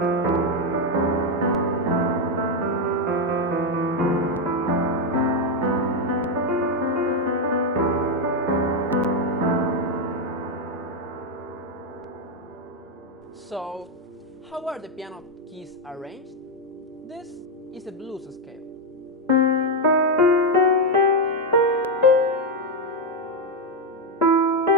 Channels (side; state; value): both; normal; correlation 0.04